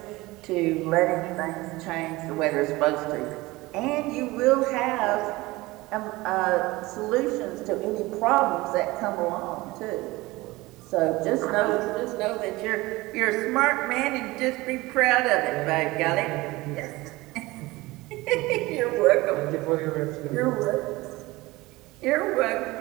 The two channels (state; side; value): quieter; left; 20.6 dB